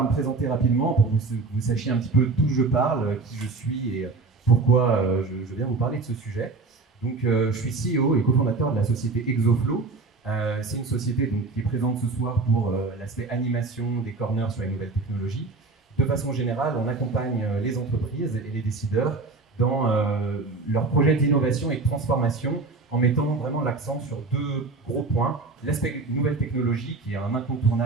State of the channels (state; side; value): quieter; left; 3.8 dB